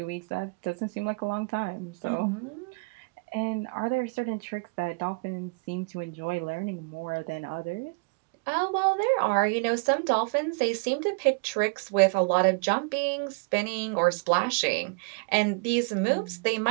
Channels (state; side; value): quieter; left; 33.1 dB